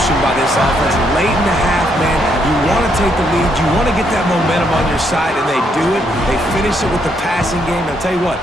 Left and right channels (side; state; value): both; normal; correlation 0.74